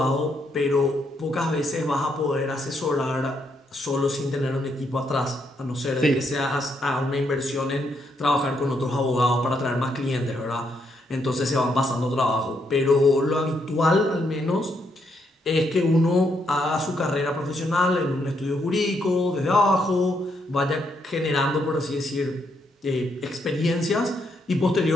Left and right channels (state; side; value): normal; both; correlation 0.76